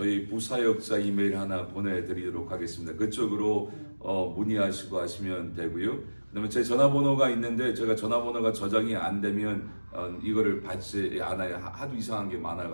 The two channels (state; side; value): inverted; both; correlation -1.00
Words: 부사역자 이메일 하나 보내드리도록 하겠습니다. 그쪽으로 문의하시고 하시면 되고요. 그다음에 제 전화번호가 있는데 제가 전화번호가 저장이 안 되면 이거를 받지 않아요. 하도 이상한 게